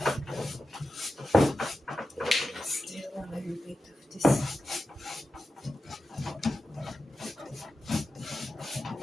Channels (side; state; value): both; normal; correlation 0.92